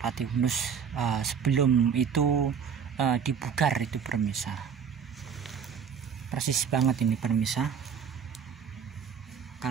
Unus sebelum itu dibugar itu pemirsa. Persis banget ini pemirsa.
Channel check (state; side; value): quieter; left; 7.1 dB